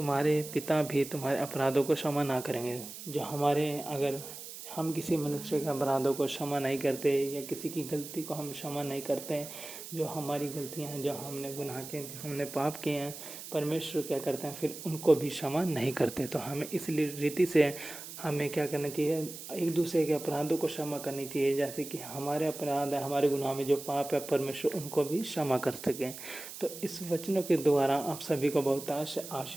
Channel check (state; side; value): noise; right; hiss, 11 dB below the sound